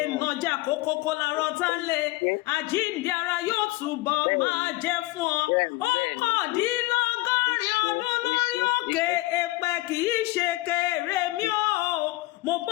nàjà kókókó lárọ́ tá lé. Àjíǹde ara yóò túbọ̀ máa jẹ́ fún ọ. Ọ̀kàndínlọ́gọ́rin ọdún lórí òkè èpẹ̀ kì í ṣe kéré mi o. Mo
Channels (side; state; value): right; quieter; 20.2 dB